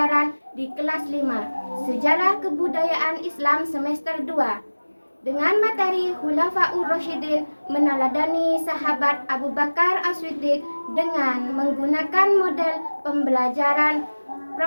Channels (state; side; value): inverted; both; correlation -1.00